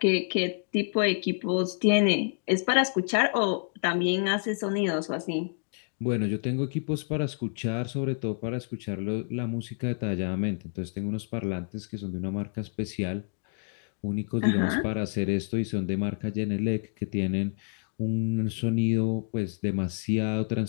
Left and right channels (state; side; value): silent; right; 59 dB below the other